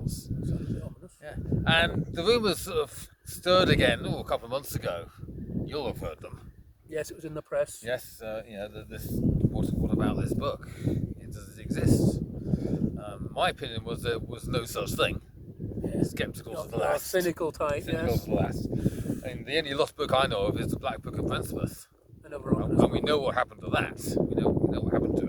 Yeah. And the rumours sort of stirred again a couple of months ago. You'll have heard them. Yes, it was in the press. Yes, what about this book? Does it exist? My opinion was there was no such thing. Yeah. Sceptical to the last. Cynical type, Cynical to the last. And the only lost book I know of is the Black Book of Princeworth. And we know what happened to that. We know what happened to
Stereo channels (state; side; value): identical; both; correlation 1.00